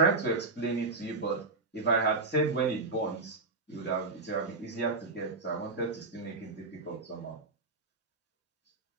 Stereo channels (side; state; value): left; quieter; 3.7 dB